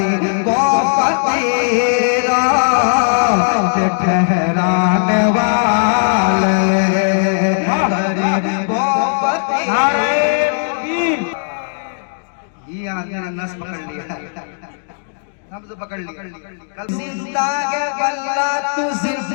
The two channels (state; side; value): silent; right; digital silence